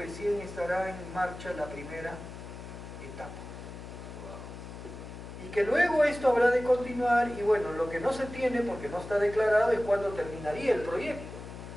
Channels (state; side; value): noise; left; hum, 12 dB below the sound